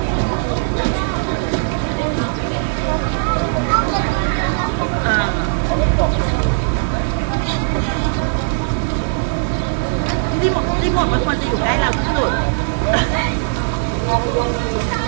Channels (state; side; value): silent; left; digital silence